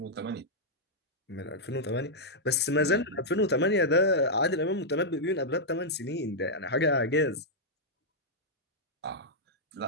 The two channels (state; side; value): normal; both; correlation -0.07